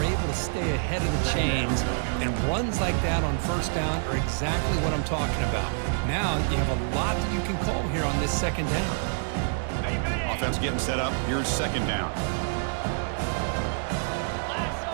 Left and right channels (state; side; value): silent; left; 59 dB below the other